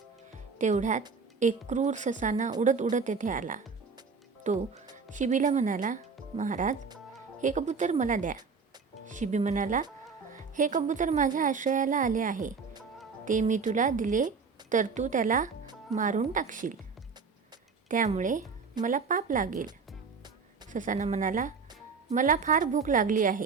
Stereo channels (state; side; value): quieter; left; 5.1 dB